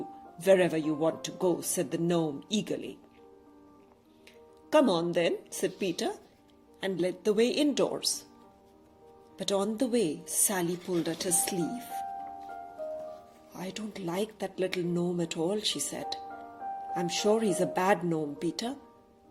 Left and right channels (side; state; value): both; identical; correlation 1.00